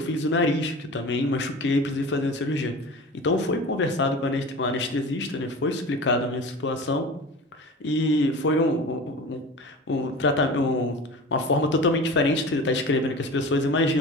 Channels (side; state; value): both; normal; correlation 0.35